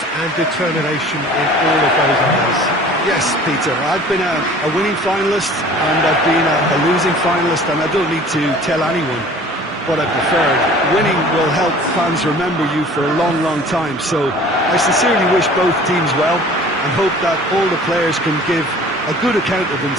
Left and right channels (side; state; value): both; normal; correlation 0.47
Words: and determination in all of those areas. Yes, Peter, I've been a winning finalist and I've been a losing finalist, and I don't need to tell anyone what I preferred. Winning will help fans remember you for a long, long time, so I sincerely wish both teams well and hope that all the players can give a good account of